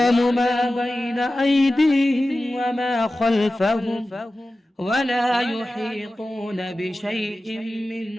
ما بين أيديهم وما خلفهم ولا يحيطون بشيء من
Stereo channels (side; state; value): both; normal; correlation 0.95